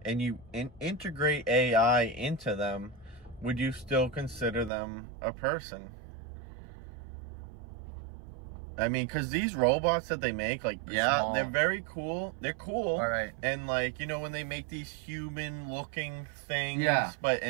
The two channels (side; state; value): left; drops out; at 4.7 s